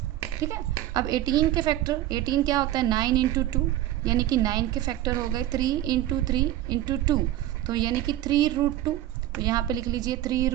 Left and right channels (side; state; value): left; quieter; 13.9 dB